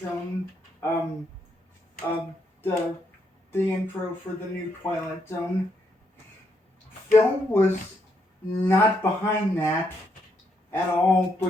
the intro for the new Twilight Zone, Phil was not behind that at all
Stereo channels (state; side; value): normal; both; correlation 0.77